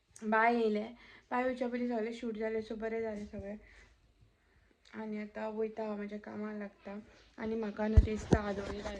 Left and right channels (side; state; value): both; identical; correlation 1.00